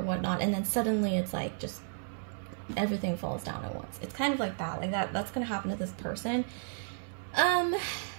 whatnot, and then suddenly it's like just everything falls down at once. It's kind of like that, that's gonna happen to this person.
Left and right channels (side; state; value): left; silent; 56 dB below the other